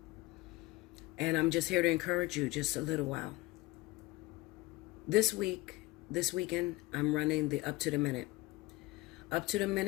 And I'm just here to encourage you just a little while. This weekend, I'm running the Up to the Minute. Up to the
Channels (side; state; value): right; quieter; 20.5 dB